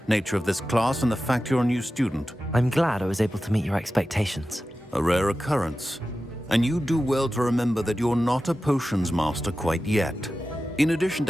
nature of this class and the fact you're a new student. I'm glad I was able to meet your expectations. A rare occurrence. And you do well to remember that you're not a potions master quite yet. In addition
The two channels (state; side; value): normal; both; correlation 0.93